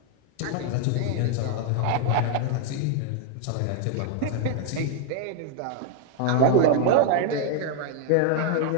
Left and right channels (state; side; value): different; both; correlation 0.00